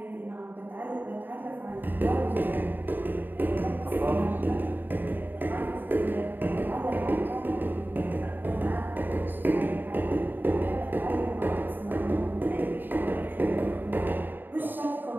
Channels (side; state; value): left; late; 0.092 ms